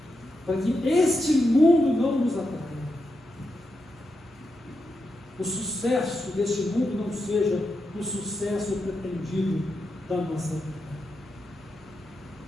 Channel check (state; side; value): normal; both; correlation 0.86